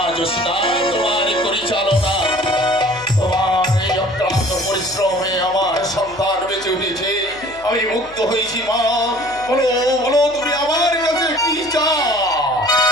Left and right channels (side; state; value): left; noise; hum, 24 dB below the sound